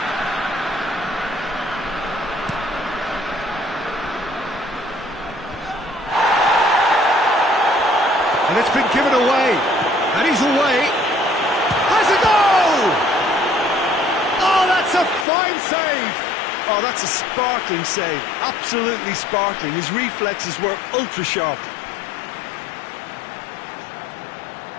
And it's been given away, and he's away. Has a goal! Oh, that's a fine save! Oh, that's a sparkling save, absolutely sparkling. His reflexes were ultra-sharp.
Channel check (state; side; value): drops out; right; at 15.2 s